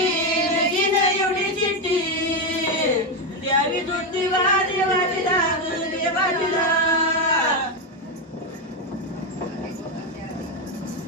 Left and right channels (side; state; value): both; normal; correlation 0.08